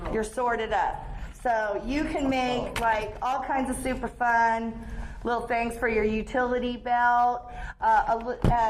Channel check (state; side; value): identical; both; correlation 1.00